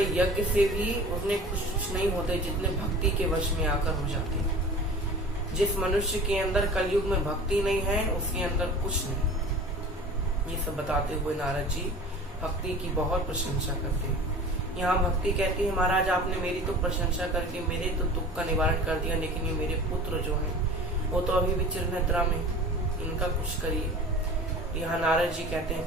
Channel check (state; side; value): normal; both; correlation 0.40